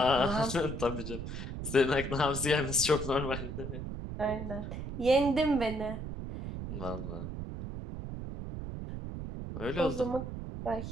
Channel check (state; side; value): noise; right; rumble, 6 dB below the sound